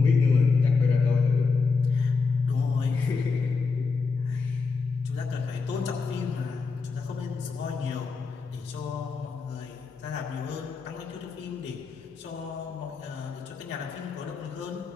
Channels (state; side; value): quieter; right; 4.7 dB